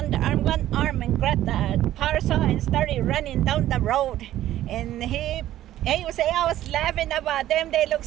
one arm and grabbed the parasol and started running down the road. And he would say, I was laughing about them. They look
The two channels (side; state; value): left; quieter; 13.3 dB